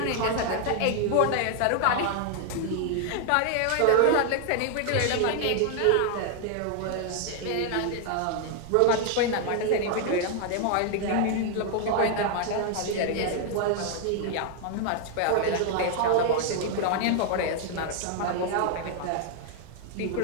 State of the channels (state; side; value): different; both; correlation 0.00